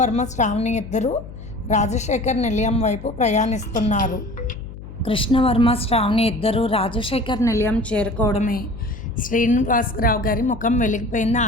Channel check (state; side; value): noise; left; hum, 14 dB below the sound